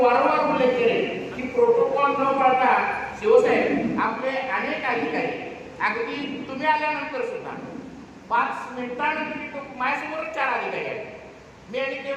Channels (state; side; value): identical; both; correlation 1.00